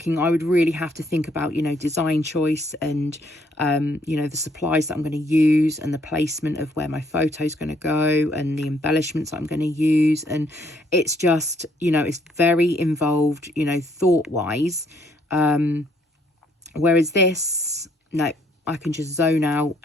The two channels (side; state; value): both; normal; correlation 0.67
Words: I would really have to think about, you know, design choice and, you know, the supplies that I'm going to use and the placement of where my photo's going to go and the embellishments I'm going to use. And it's just, you know, it's very involved, you know, thought-wise. Whereas this, no, I can just zone out